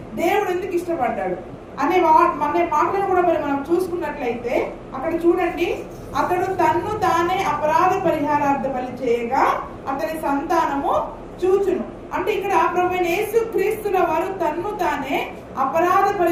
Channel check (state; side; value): identical; both; correlation 1.00